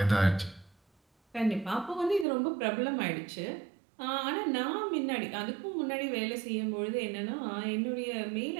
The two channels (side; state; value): left; drops out; at 2.2 s